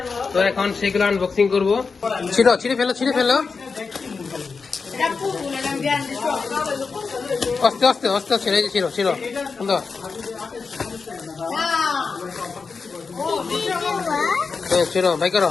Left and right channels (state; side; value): quieter; right; 4.9 dB